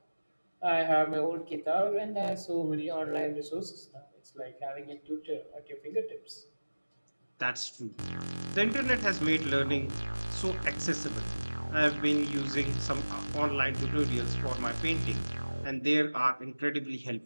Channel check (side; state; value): both; inverted; correlation -1.00